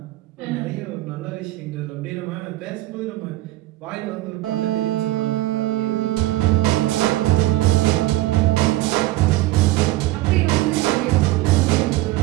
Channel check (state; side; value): quieter; left; 17.3 dB